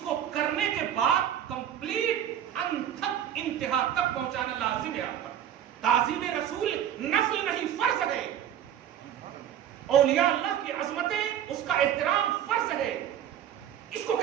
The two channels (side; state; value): left; quieter; 10.2 dB